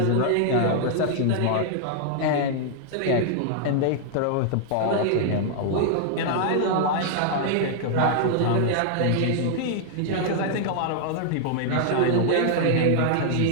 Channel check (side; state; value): both; different; correlation 0.00